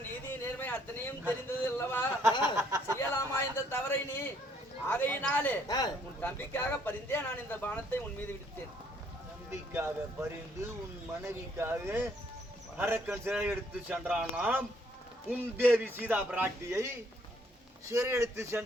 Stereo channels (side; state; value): both; normal; correlation 0.67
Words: நீதி நேர்மை அத்தனையும் தெரிந்தது அல்லவா? செய்யலாமா இந்த தவறை நீ? ஆகையினாலே உன் தம்பிக்காக பரிந்தே நான் இந்த பானத்தை உன் மீது விடுத்தேன். தம்பிக்காக பரிந்து உன் மனைவிக்காக அரக்கன் சிறை எடுத்து சென்றானாம். உன் தேவி சீதா பிராட்டியை சிறை எடுத்து